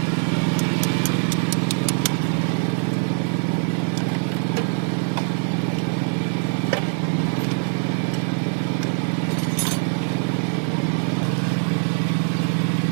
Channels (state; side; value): silent; left; digital silence